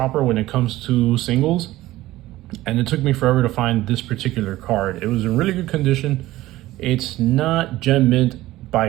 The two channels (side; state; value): left; quieter; 16.6 dB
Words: when it comes to singles, and it took me forever to find this particular card. It was in really good condition. It's not gem mint by